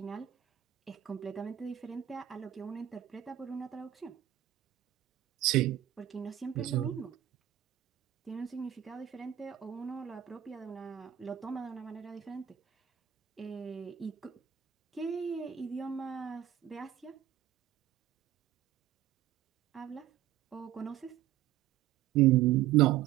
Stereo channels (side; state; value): left; quieter; 12.1 dB